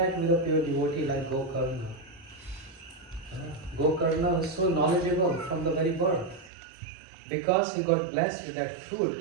with a pure devotee like Gokarna. Gokarna is so knowledgeable from the very birth because he got blessed with that fruit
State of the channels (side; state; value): left; drops out; at 6.5 s